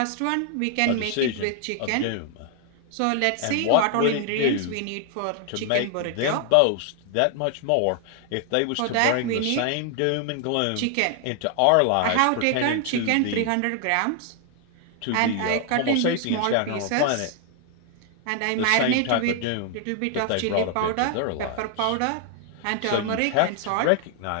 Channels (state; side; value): different; both; correlation 0.00